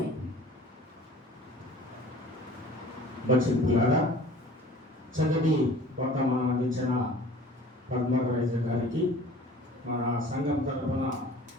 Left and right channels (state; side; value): normal; both; correlation 0.46